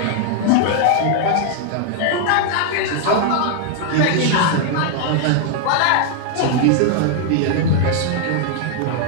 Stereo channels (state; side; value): different; both; correlation 0.00